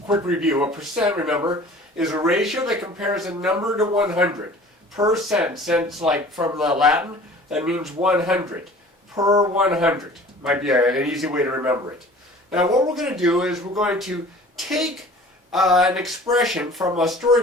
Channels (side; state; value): both; normal; correlation 0.46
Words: review. A percent, remember, is a ratio that compares a number to 100. Percent, since like from the Latin, that means 100. Per 100. Might be an easy way to remember it. Now, what we're going to do is we're going to take an expression from a